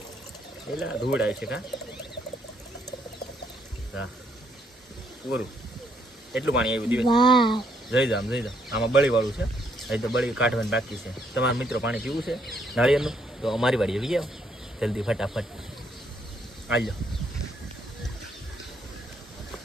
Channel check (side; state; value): both; normal; correlation 0.72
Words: પેલા ધૂળ આવી છે કા હા પૂરું એટલું પાણી આવ્યું દીવે. જઈ જામ આમાં બળી વાળું છે. હજી તો બળી કાઢવાની બાકી છે. તમારા મિત્રો પાણી પીવું છે નાળિયેરનું તો અમારી વાડી આવી જાવ જલ્દી ફટાફટ આવી જાઓ.